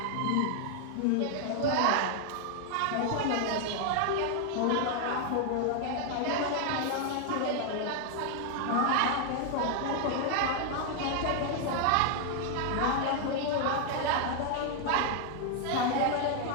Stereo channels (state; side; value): different; both; correlation 0.00